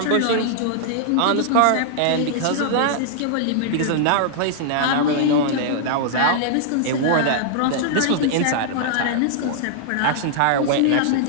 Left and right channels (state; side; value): different; both; correlation -0.01